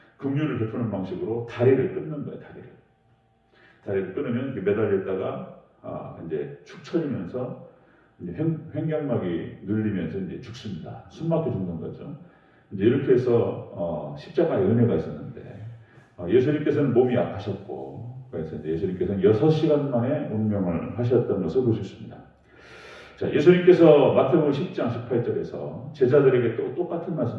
긍휼을 베푸는 방식으로 다리를 끊는 거예요. 다리를 끊으면 매달렸다가 이제 축 처지면서 이제 횡격막이 눌리면서 이제 죽습니다. 숨막혀 죽는 거죠. 이제 이렇게 해서 십자가의 은혜가 있었는데, 예수님께서는 몸이 약하셨고, 그래서 이제 예수님께서는 6시간 만에 운명을 하셨던 것을 볼 수 있습니다. 자, 예수님께서 마태복음 10장 18절에서 제자들에게 또 똑같은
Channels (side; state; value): both; identical; correlation 1.00